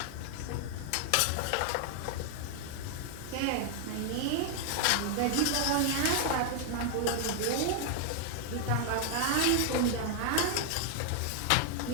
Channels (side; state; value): both; different; correlation 0.00